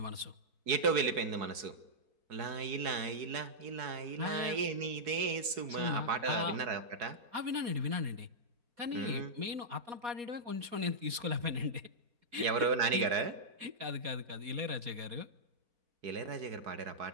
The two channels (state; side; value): late; left; 4.7 ms